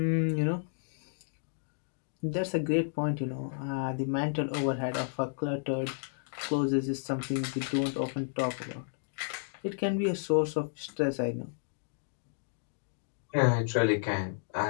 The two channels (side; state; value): right; silent; digital silence